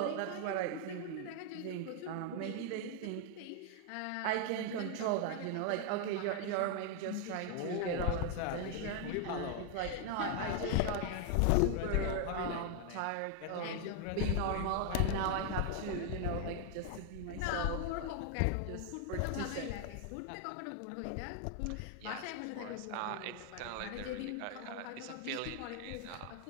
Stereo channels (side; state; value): both; different; correlation 0.00